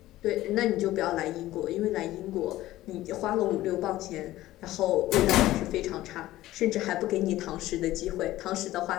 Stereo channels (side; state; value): right; quieter; 15.7 dB